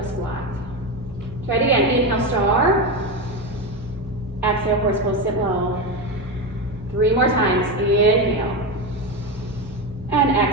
squat. Try it again. Inhale, star. Exhale, horse pose. Sit low. 3 more times. Inhale. And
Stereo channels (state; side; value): normal; both; correlation 0.16